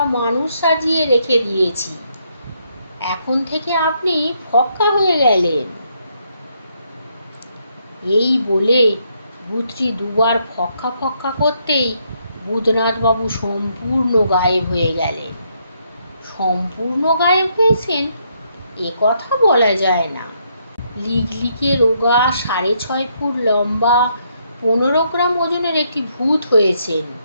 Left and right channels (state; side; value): inverted; both; correlation -0.74